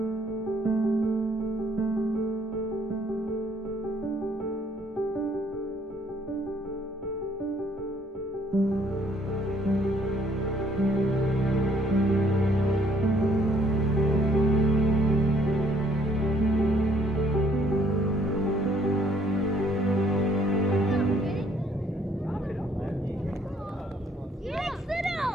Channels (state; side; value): normal; both; correlation 0.63